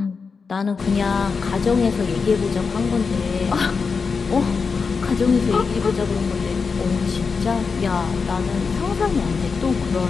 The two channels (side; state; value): right; quieter; 5.1 dB